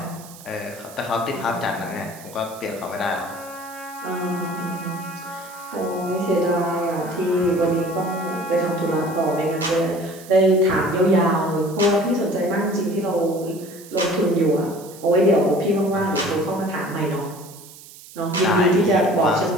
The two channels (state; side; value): noise; right; hiss, 19 dB below the sound